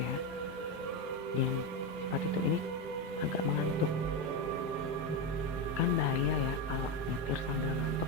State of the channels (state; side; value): normal; both; correlation 0.13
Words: Dan si Pak Tito ini agak mengantuk. Kan bahaya ya kalau nyetir sambil